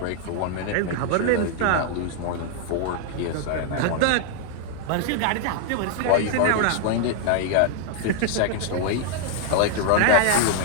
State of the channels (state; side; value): different; both; correlation 0.00